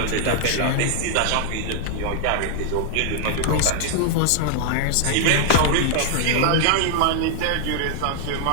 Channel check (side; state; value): both; different; correlation 0.00